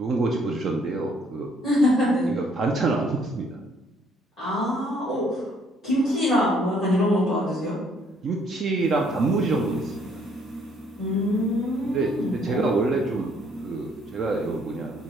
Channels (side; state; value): both; normal; correlation 0.65